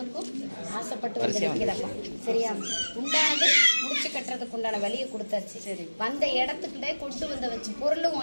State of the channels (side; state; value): both; inverted; correlation -1.00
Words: ஆசைப்பட்டு வந்து நிற்கிறப்பா. சரியா? உண்டானது முடிச்சு கட்டுறதுக்கு உண்டான வழியை கொடுத்தாச்சு. சரி, வந்த இடத்துக்கிட்டே கொண்டு வந்த வச்சு பொருளும்